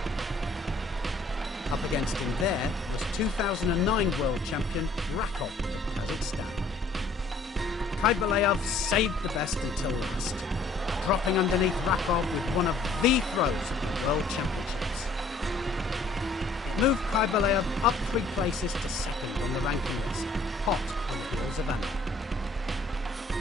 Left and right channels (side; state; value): right; quieter; 3.2 dB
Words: Up against him there was 2009 world champion Rakov of Kazakhstan. Kybelev saved the best until last, dropping underneath Rakov with one of the throws of the World Championships. Moved Kaibalev up 3 places to second on the ranking list, hot on the heels of Anna.